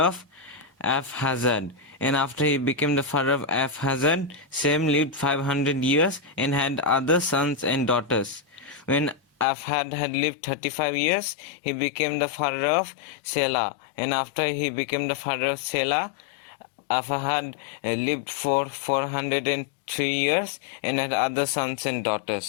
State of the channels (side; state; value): right; drops out; at 9.5 s